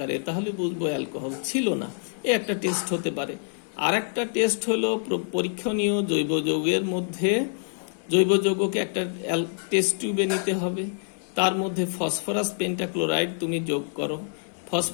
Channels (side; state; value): right; silent; 61 dB below the other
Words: তাহলে বুঝবো অ্যালকোহল ছিল না। এ একটা টেস্ট হতে পারে। আর একটা টেস্ট হলো পরীক্ষণীয় জৈব যৌগের মধ্যে জৈব যৌগকে একটা টেস্ট টিউবে নিতে হবে, তার মধ্যে ফসফরাস পেন্টাক্লোরাইড তুমি যোগ করো।